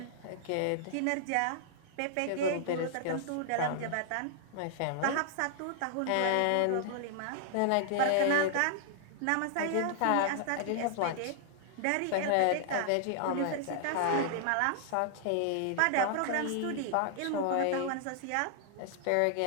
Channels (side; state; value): both; different; correlation -0.01